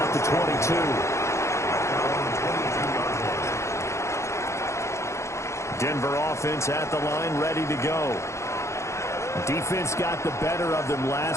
the 22. Denver offense at the line, ready to go. Defense got the better of them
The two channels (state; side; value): late; right; 0.14 ms